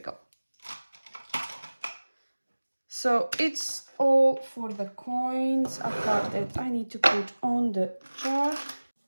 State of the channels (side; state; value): both; inverted; correlation -1.00